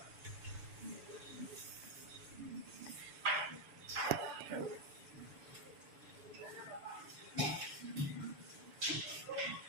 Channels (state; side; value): late; left; 6.9 ms